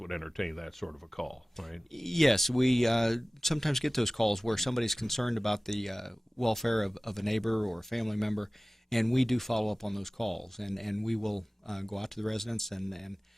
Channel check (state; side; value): normal; both; correlation 0.98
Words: entertain that sort of a call, right? Yes, we sometimes get those calls where somebody's concerned about the welfare of a neighbor or a family member, and we do follow up on those calls, and we will go out to the residents and